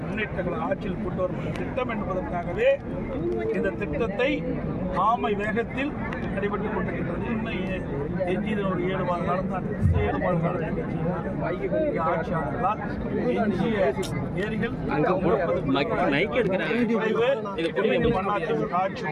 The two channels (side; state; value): both; identical; correlation 1.00